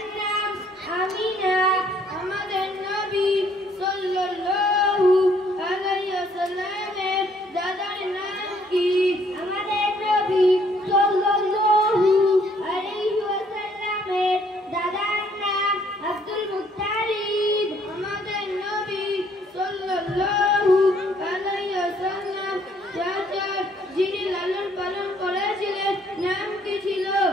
নাম আমিনা। আমাদের নবী সাল্লাল্লাহু আলাইহি ওয়াসাল্লামের দাদার নাম কি? আমাদের নবী সাল্লাল্লাহু আলাইহি ওয়াসাল্লামের দাদার নাম আব্দুল মুত্তালিব। আমাদের নবী সাল্লাল্লাহু আলাইহি ওয়াসাল্লাম চাচার যিনি লালন পালন করেছিলেন নাম কি ছিল?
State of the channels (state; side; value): normal; both; correlation 0.65